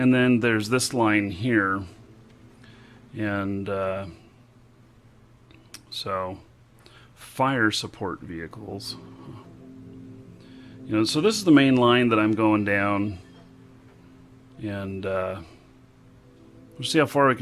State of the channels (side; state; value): both; identical; correlation 1.00